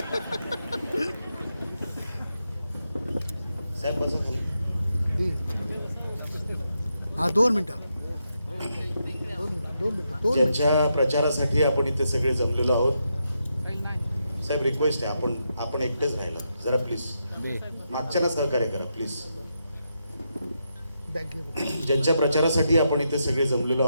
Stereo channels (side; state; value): both; inverted; correlation -0.83